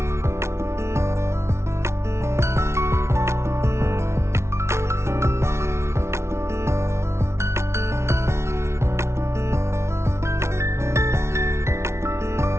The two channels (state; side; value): late; left; 0.13 ms